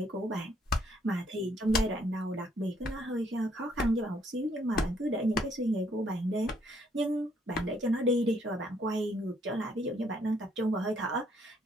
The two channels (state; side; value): normal; both; correlation 0.68